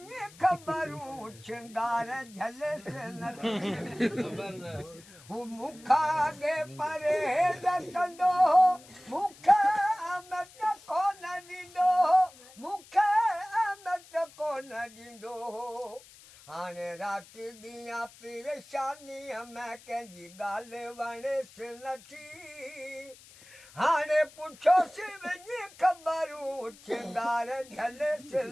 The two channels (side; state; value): left; noise; hiss, 22 dB below the sound